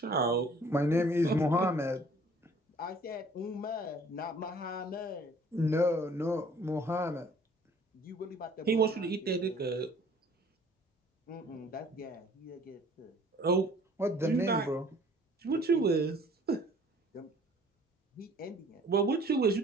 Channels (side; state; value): both; normal; correlation 0.54